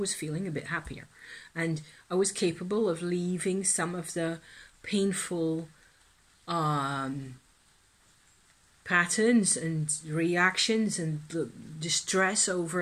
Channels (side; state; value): both; identical; correlation 1.00